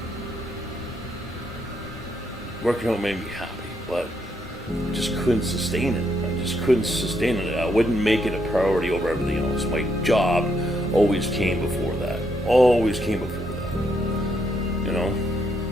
working out made me happy, but just couldn't sustain it. I wouldn't make it a priority over everything else. My job always came before that. You know?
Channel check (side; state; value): both; normal; correlation 0.76